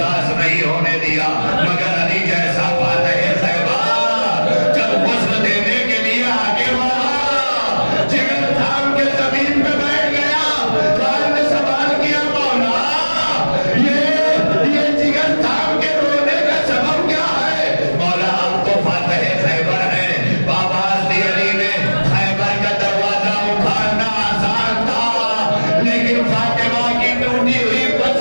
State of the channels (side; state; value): both; inverted; correlation -1.00